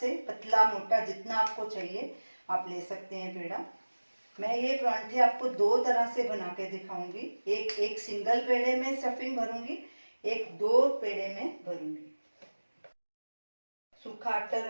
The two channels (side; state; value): both; inverted; correlation -1.00